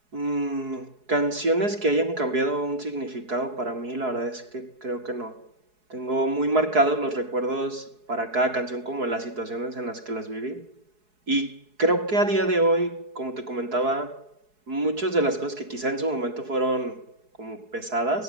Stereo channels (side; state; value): left; late; 4.7 ms